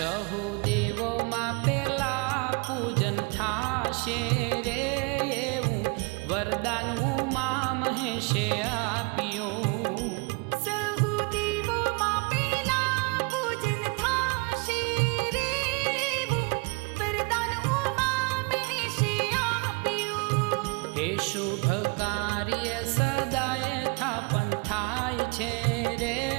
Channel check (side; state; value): left; quieter; 29.7 dB